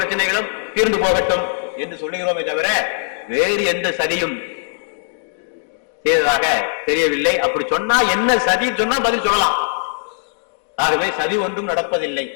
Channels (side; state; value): right; silent; digital silence